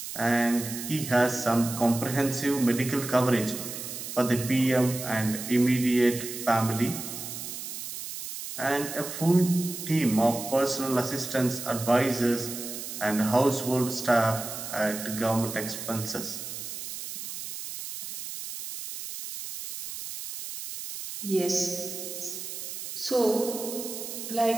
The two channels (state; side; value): noise; right; hiss, 8 dB below the sound